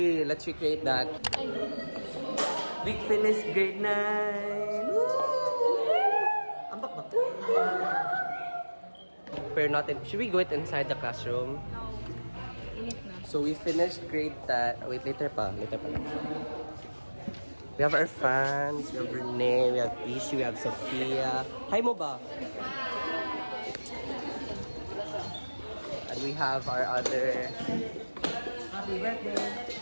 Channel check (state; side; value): inverted; both; correlation -1.00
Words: let's recreate that. We finished grade 9. Ambak ba? Pero natin, should we go it inside the classroom? No. Init na. So we finished grade 10. Wait, later pa. We have our fans, we have Renee, we have Ishi, we have Sophia. Hi mo ba? And we have our other Happy birthday.